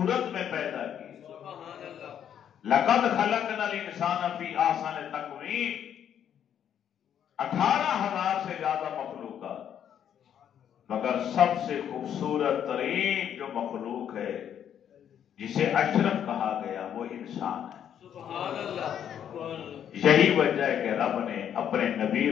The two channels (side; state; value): right; quieter; 9.3 dB